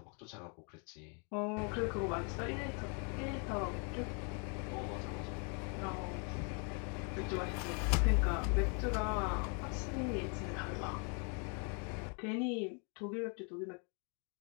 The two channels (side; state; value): right; quieter; 37.5 dB